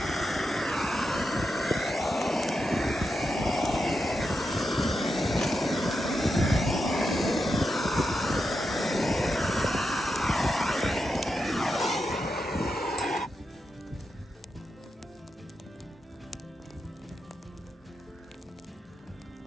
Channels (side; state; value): both; normal; correlation 0.87